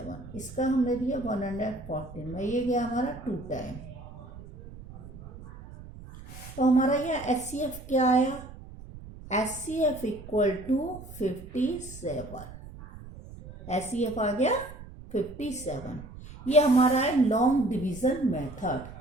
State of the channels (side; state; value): right; noise; rumble, 15 dB below the sound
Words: इसका हमने दिया 114 में, ये गया हमारा 2 टाइम। तो हमारा यह एचसीएफ क्या आया, एचसीएफ इक्वल टू 57, एचसीएफ आ गया 57। ये हमारा है लॉन्ग डिवीजन मेथड,